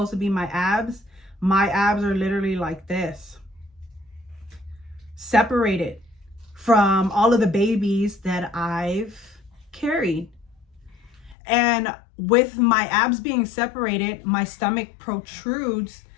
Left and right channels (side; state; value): right; drops out; at 11.4 s